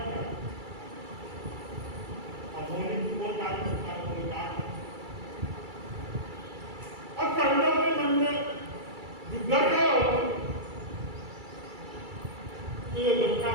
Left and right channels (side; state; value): left; late; 2.3 ms